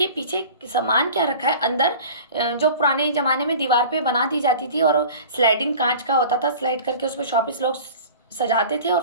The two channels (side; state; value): both; inverted; correlation -0.40